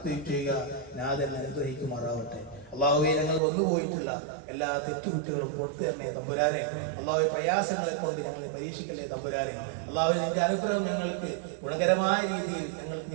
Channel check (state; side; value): drops out; left; at 3.4 s